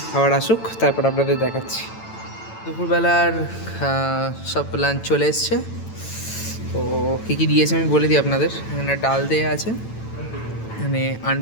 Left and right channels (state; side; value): late; right; 9.0 ms